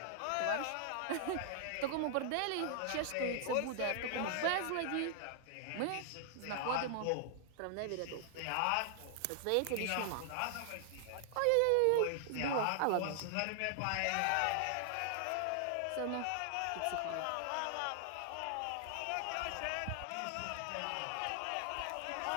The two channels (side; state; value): both; different; correlation 0.00